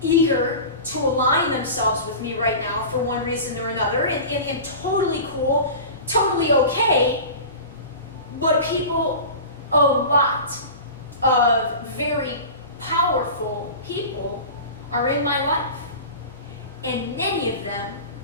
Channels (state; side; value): inverted; both; correlation -0.34